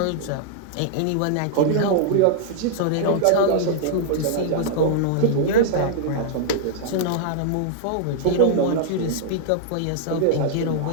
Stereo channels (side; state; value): both; different; correlation -0.01